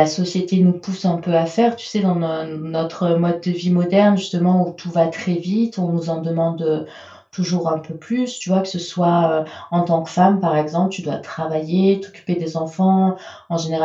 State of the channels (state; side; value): identical; both; correlation 1.00